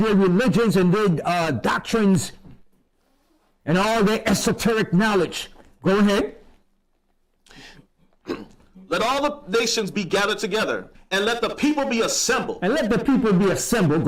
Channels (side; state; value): both; identical; correlation 1.00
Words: their religions and their doctrines and all their esoteric knowledge. Go ahead. Let all the nations be gathered together, and let the people be assembled. And let the people be assembled.